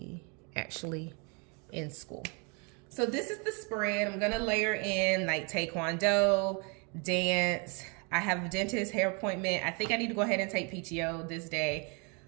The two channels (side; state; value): left; quieter; 33.7 dB